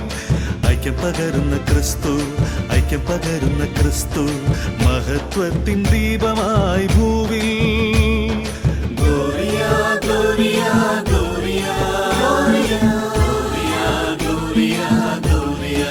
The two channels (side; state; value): both; identical; correlation 1.00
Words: ഐക്യം പകരുന്ന ക്രിസ്തു ഐക്യം പകരുന്ന ക്രിസ്തു മഹത്വത്തിൻ ദീപമായി ഭൂവിൽ Gloria gloria gloria gloria gloria gloria